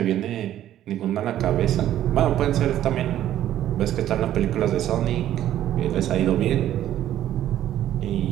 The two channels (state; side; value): quieter; left; 12.1 dB